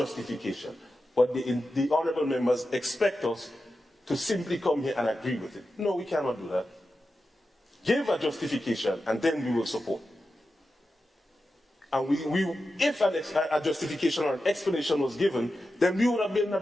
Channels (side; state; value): both; normal; correlation 0.91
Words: But the honourable members expect us to simply come here and agree with it. No, we cannot do that. Give a justification and then we will support. And if a justification or an explanation was given, then we would have been in a